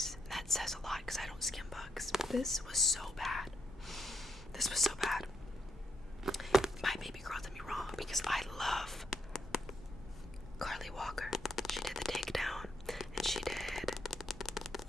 That says a lot because I don't skim books. This was so bad. My baby girl did me wrong because I love Carly Walker. She did The Takedown, and she did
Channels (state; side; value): normal; both; correlation 0.79